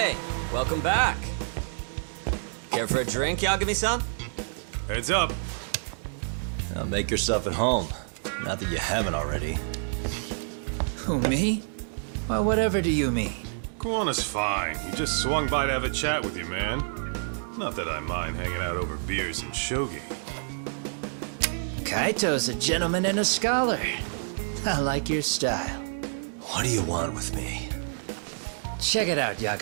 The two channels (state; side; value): silent; left; digital silence